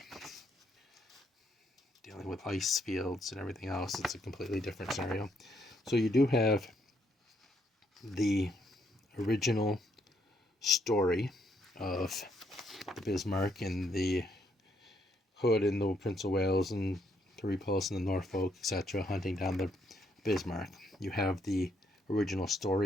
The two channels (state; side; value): normal; both; correlation 0.73